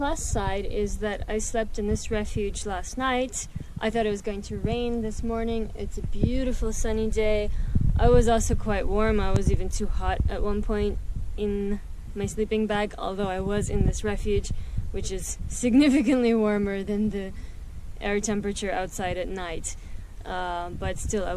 side is that I slept in this refuge last night. I thought it was going to rain this morning. It's a beautiful sunny day. I was also quite warm. I was even too hot at one point in my sleeping bag, although I was in this refuge, which is significantly warmer than the air temperature outside at night. But still, I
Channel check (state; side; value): identical; both; correlation 1.00